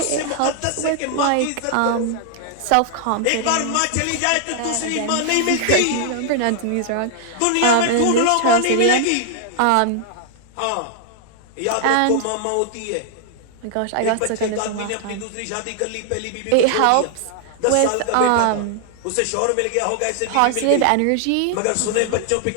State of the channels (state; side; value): different; both; correlation 0.00